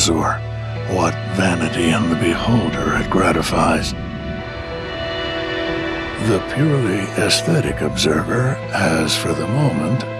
or what vanity in the beholder it gratifies. The purely aesthetic observer has, for the moment,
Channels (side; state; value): both; identical; correlation 1.00